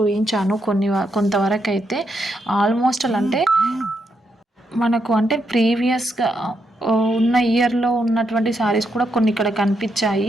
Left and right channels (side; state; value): both; normal; correlation 0.80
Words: కొంతవరకు అయితే ఆల్మోస్ట్ అలా అంటే మనకు అంటే ప్రీవియస్గా ఉన్న ఇయర్లో ఉన్నటువంటి శారీస్ కూడా కొన్ని ఇక్కడ